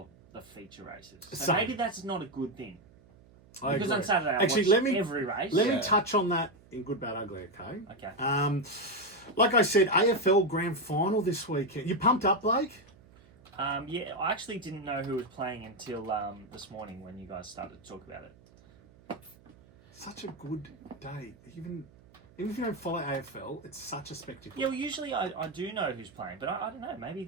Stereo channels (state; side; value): noise; right; hum, 26 dB below the sound